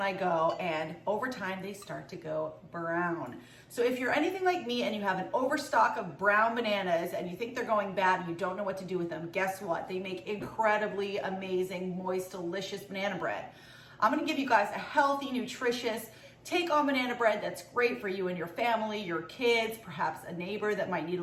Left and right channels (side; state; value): both; identical; correlation 1.00